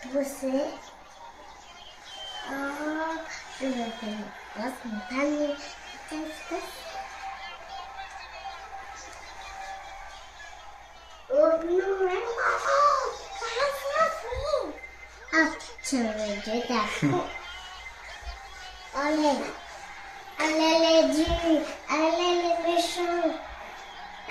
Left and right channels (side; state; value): both; identical; correlation 1.00